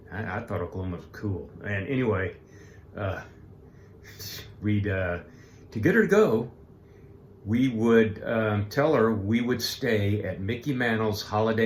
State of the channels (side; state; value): both; identical; correlation 1.00